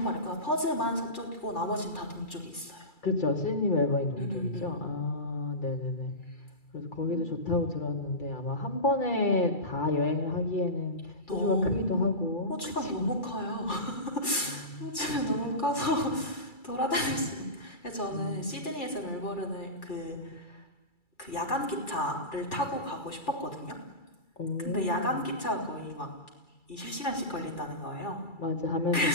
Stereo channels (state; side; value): late; right; 2.3 ms